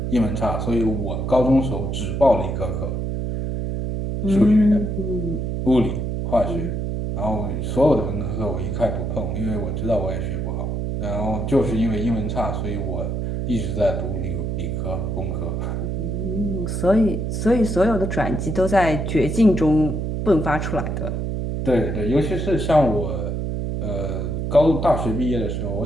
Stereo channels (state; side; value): noise; right; hum, 2 dB below the sound